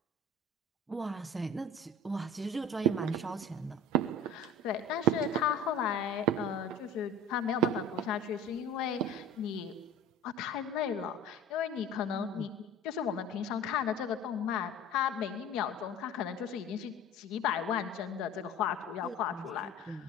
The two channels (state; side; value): normal; both; correlation 0.40